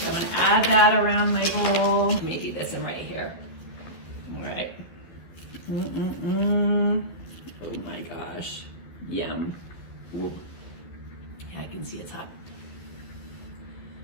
I'm gonna add that around my bowl. Maybe this one right here. All right. Oh my gosh. Yum. Ooh. Yeah, I can see it's hot.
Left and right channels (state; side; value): late; right; 12 ms